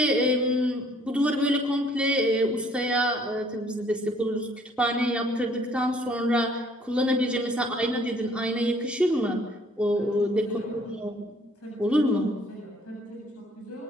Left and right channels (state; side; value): normal; both; correlation 0.60